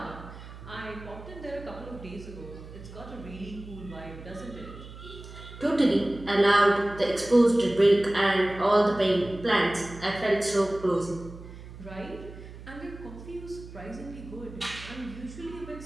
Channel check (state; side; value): noise; right; hum, 15 dB below the sound